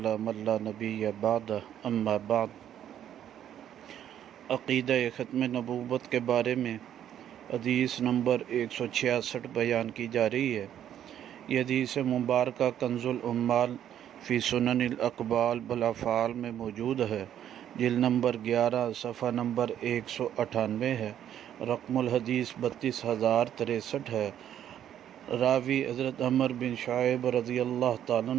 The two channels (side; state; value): left; quieter; 10.4 dB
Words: من لا نبی بعد اما بعد۔ عقیدہ ختم نبوت کے بارے میں حدیث نمبر 166 بیان کی جا رہی ہے۔ یہ حدیث مبارکہ کنز العمال فی سنن الاقوال بالافعال میں موجود ہے، جلد نمبر 11 صفحہ نمبر 198 ہے، رقم الحدیث 32,063 ہے۔ راوی حضرت عمر بن شعیب رضی اللہ تعالیٰ